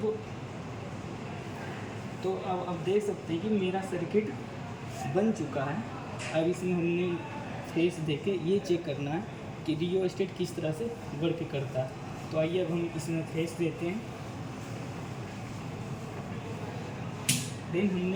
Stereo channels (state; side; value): identical; both; correlation 1.00